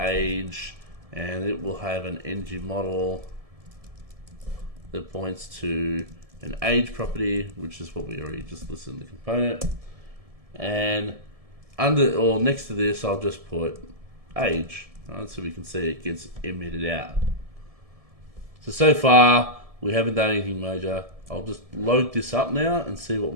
and it will have an ng model that points to an age property, which is what we already just listed in the component. And under or next to this, I'll just put age, right, so we can see it gets emitted out. So far, we haven't done anything major. I'll just load this up now and see what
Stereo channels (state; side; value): late; left; 1.7 ms